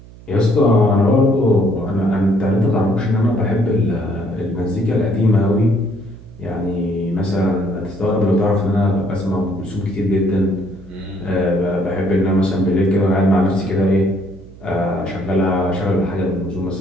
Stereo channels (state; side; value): noise; right; hum, 20 dB below the sound